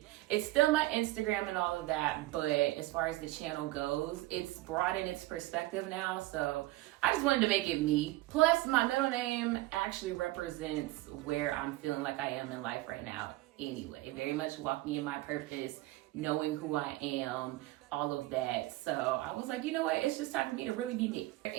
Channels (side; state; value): left; quieter; 18.5 dB